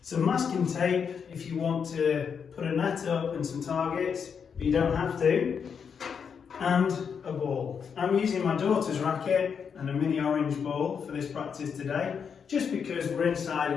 some masking tape if you want to put a net up and some targets, but you don't have to, and a ball. I'm using my daughter's racket and a mini orange ball for this practice today, just because we're inside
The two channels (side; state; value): right; quieter; 6.7 dB